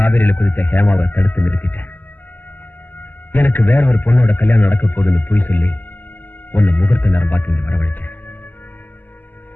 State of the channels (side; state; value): right; late; 0.086 ms